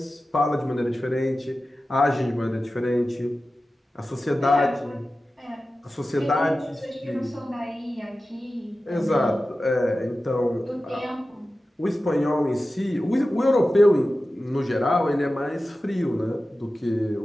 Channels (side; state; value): both; normal; correlation 0.94